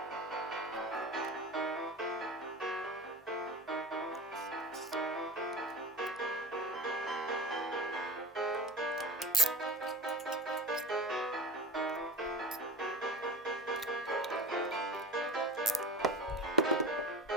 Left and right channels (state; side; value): normal; both; correlation 0.33